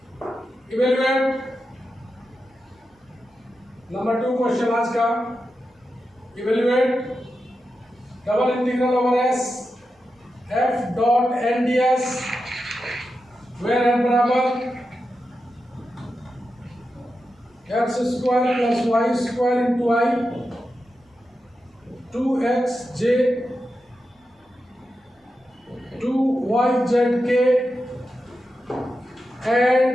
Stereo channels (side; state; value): both; normal; correlation 0.89